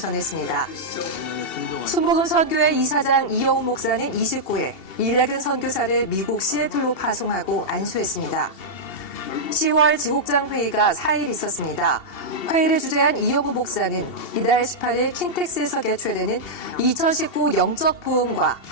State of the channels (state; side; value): late; right; 2.7 ms